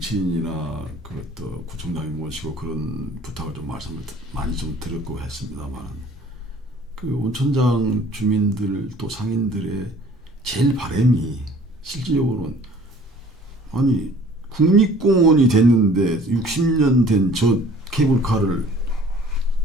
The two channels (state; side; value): normal; both; correlation 0.51